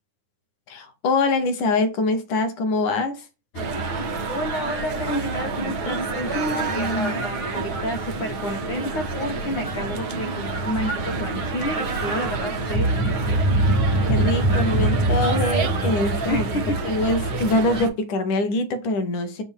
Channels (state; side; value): late; right; 9.8 ms